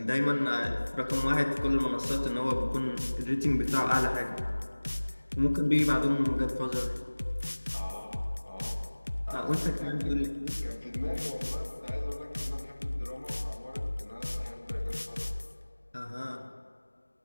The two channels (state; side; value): inverted; both; correlation -1.00